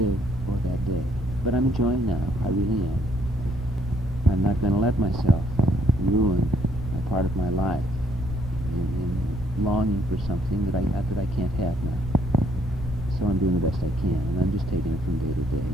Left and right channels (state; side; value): normal; both; correlation 0.68